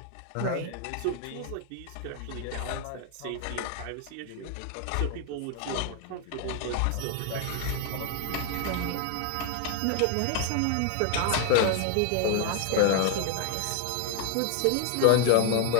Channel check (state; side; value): different; both; correlation 0.01